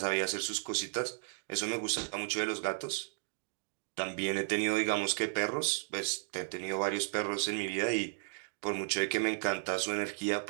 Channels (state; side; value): silent; left; digital silence